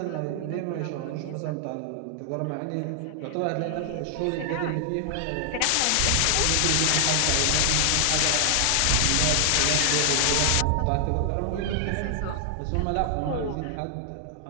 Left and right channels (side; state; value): both; different; correlation 0.00